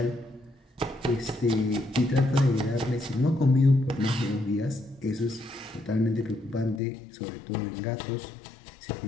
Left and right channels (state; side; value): drops out; right; at 6.8 s